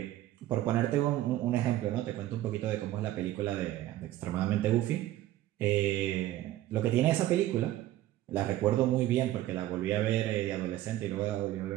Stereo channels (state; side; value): quieter; left; 14.4 dB